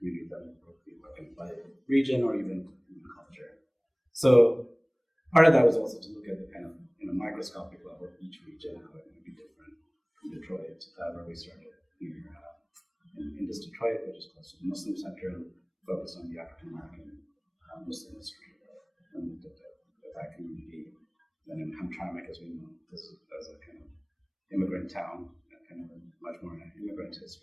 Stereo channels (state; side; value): identical; both; correlation 1.00